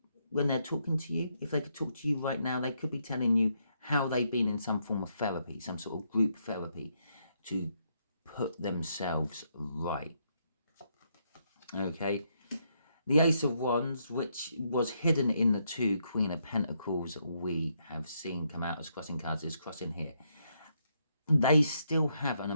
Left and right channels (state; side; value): inverted; both; correlation -0.76